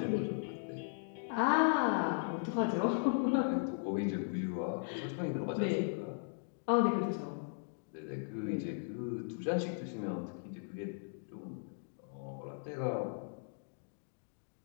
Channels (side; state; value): right; silent; digital silence